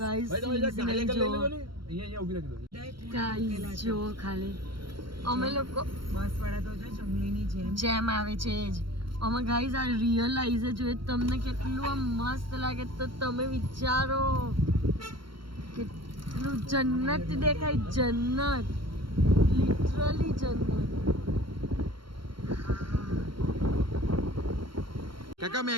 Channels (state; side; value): late; left; 0.73 ms